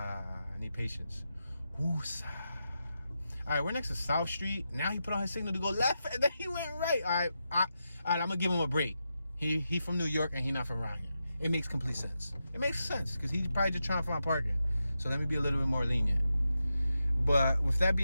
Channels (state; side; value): inverted; both; correlation -0.88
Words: I need patience. Woosah. All right, we're next to South Street. Now he put on his signal to go left, and then he went right. All right, I'm going to give him a break. He from New York, and he not from around here. It makes complete sense. It makes sense, because he's probably just trying to find parking. So let me be a little bit more lenient. But with that